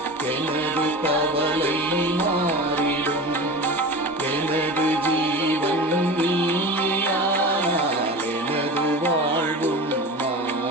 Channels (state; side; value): normal; both; correlation 0.31